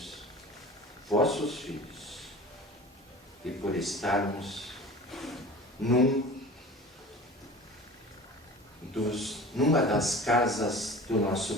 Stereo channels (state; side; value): normal; both; correlation 0.38